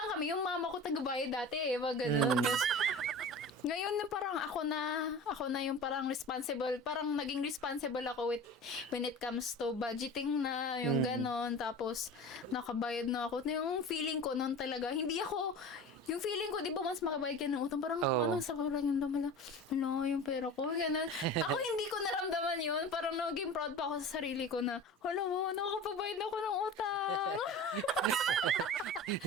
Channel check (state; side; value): normal; both; correlation 0.35